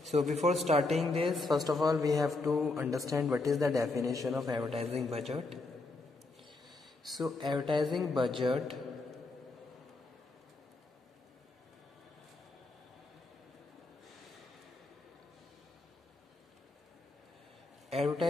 So before starting this, first of all we have to understand what is the definition of advertising budget. So advertising budget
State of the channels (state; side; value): quieter; right; 3.2 dB